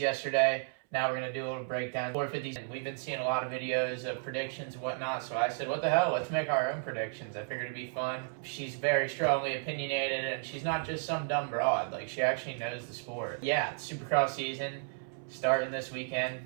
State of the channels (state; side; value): silent; left; 56 dB below the other